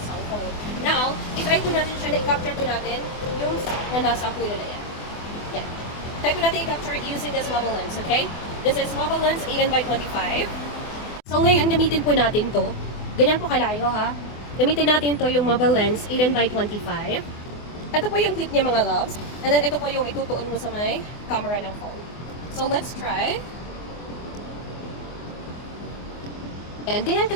cellphone. Now, itry po natin siya na i-capture po natin yung na nasa puno na yan. Yan. Try po natin i-capture using this mobile lens, okay? This is mobile lens 18x25. So ngayon, gamitin po natin to. Ganyan po kalayo ha. Gamitin natin to yung mobile lens 18x25. Ito po yung clip niya mga loves. And then ito po yung itutuon mo sa may camera ng phone. So let's try. And ganyan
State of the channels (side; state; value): right; late; 24 ms